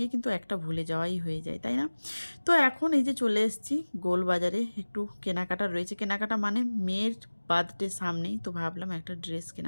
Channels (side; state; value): both; inverted; correlation -1.00